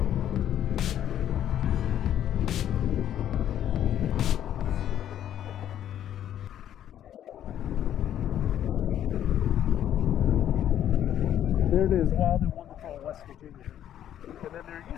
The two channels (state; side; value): quieter; right; 10.8 dB